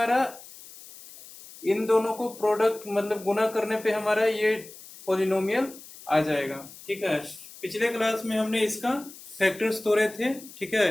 इन दोनों को प्रोडक्ट मतलब गुना करने पे हमारा ये पॉलिनोमियल आ जाएगा। ठीक है, पिछले क्लास में हमने इसका फैक्टर्स तोड़े थे। ठीक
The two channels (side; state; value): left; noise; hiss, 18 dB below the sound